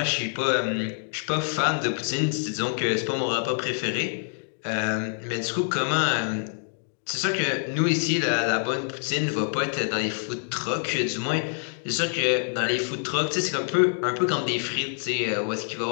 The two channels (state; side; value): silent; right; digital silence